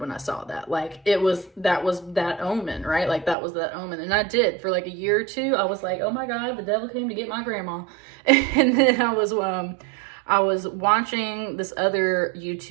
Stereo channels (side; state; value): left; drops out; at 3.4 s